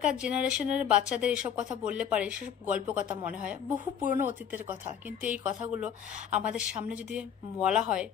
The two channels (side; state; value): right; quieter; 8.5 dB